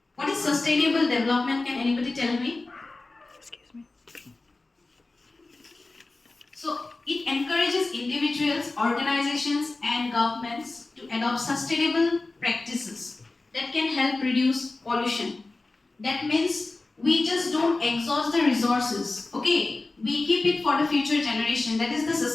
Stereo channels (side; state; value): right; quieter; 3.3 dB